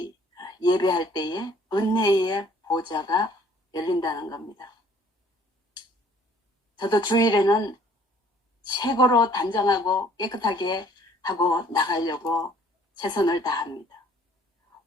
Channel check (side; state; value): both; normal; correlation 0.58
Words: 예배할 때에 은혜의 보좌가 열린다는 겁니다. 저도 주일에는 최고로 단정하고 깨끗하게 하고 나가려고 최선을 다합니다.